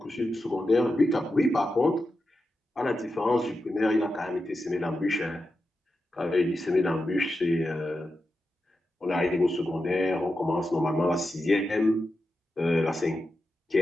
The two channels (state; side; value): normal; both; correlation 0.89